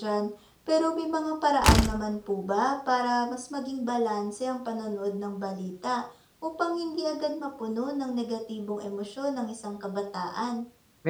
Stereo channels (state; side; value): identical; both; correlation 1.00